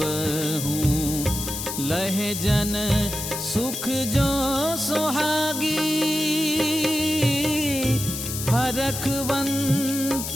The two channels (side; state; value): left; noise; hiss, 5 dB below the sound